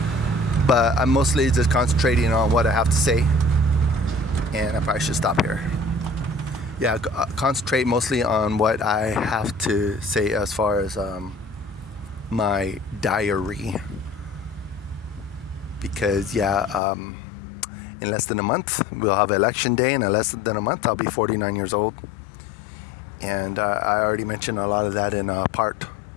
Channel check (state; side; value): drops out; right; at 16.8 s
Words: But I'm mostly just concentrating on what I have to say. And I probably should stop here. Concentrate mostly on what I have to say as far as my diary, because in less than a month we'll have election day, and in less than a month I'll be 49 years old, and I already mentioned a lot of that in part